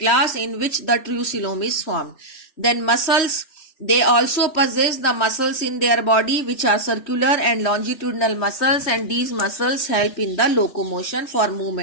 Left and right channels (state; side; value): late; right; 3.4 ms